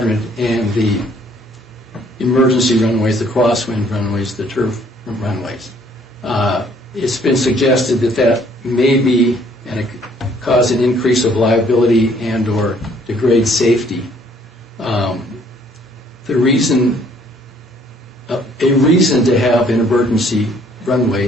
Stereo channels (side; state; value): both; normal; correlation 0.62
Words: and the emergency runways, the crosswind runways, the turf runways. It's been suggested that may be and it could cause an increase of liability and or degrade safety. A reason to have an emergency runway